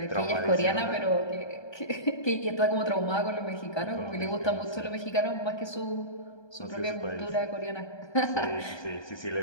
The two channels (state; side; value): late; right; 1.2 ms